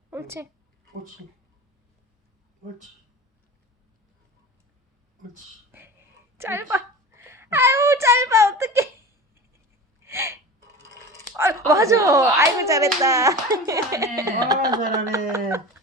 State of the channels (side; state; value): both; normal; correlation 0.34